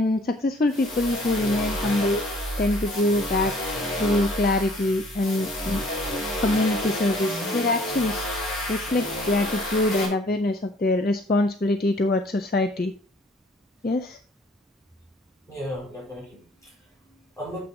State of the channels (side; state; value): both; normal; correlation 0.56